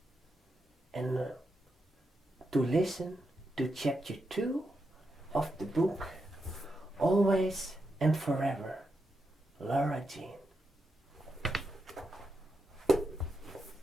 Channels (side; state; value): both; normal; correlation 0.85